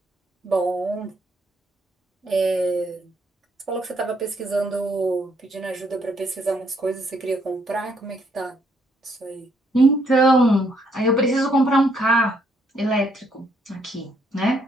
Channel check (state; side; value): normal; both; correlation 0.71